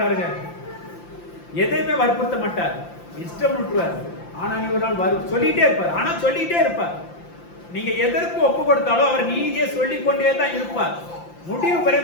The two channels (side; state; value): right; late; 5.8 ms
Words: எதையுமே வற்புறுத்த மாட்டார், இஷ்டம் விட்டுருவார். ஆனா நீ ஒரு நாள் சொல்லிட்டே இருப்பார். ஆனா சொல்லிட்டே இருப்பார். நீங்க எதற்கு ஒப்பு கொடுத்தாலும் அவர் நீதியை சொல்லிக்கொண்டே தான் இருப்பார். முடிவு